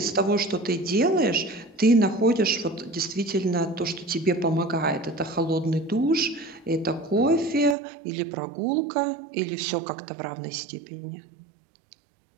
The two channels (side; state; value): left; drops out; at 7.8 s